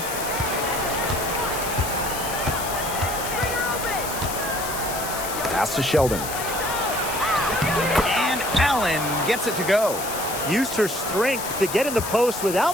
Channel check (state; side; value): noise; left; hiss, 7 dB below the sound